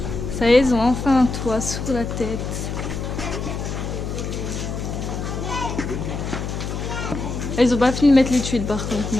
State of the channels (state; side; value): noise; left; hum, 4 dB below the sound